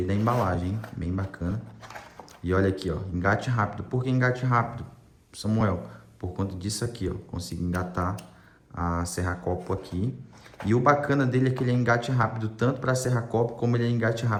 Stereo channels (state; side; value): identical; both; correlation 1.00